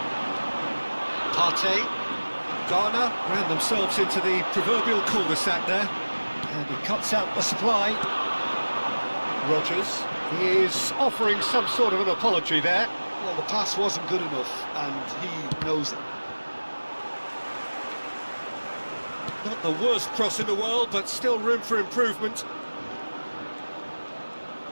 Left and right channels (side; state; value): both; inverted; correlation -1.00